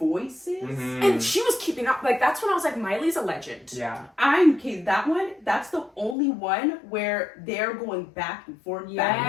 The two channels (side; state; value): right; drops out; at 6.2 s